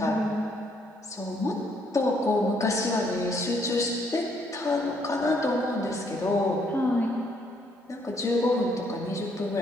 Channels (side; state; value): both; normal; correlation 0.70